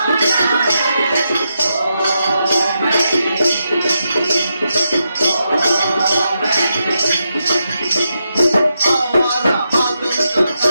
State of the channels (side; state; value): both; inverted; correlation -0.85